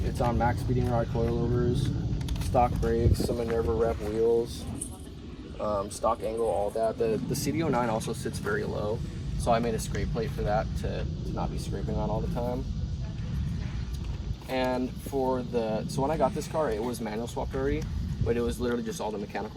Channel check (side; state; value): both; identical; correlation 1.00